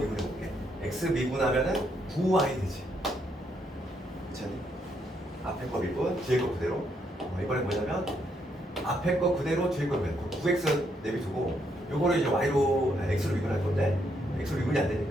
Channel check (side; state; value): both; normal; correlation 0.75